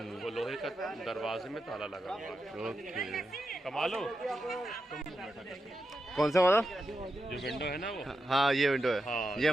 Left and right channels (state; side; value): normal; both; correlation 0.87